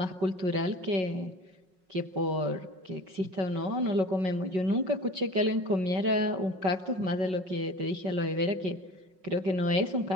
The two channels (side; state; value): left; late; 5.4 ms